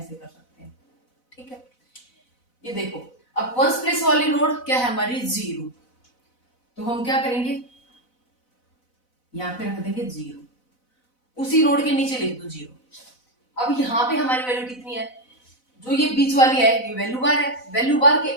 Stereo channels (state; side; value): late; right; 4.0 ms